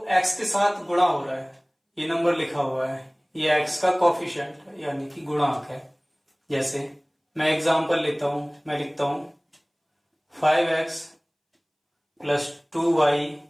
x के साथ गुणा हो रहा है, ये नंबर लिखा हुआ है, ये x का कोफिशिएंट है, यानी कि गुणांक है। जैसे मैं एग्जांपल लेता हूं, मैं लिखता हूं 5x plus 2y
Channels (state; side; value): identical; both; correlation 1.00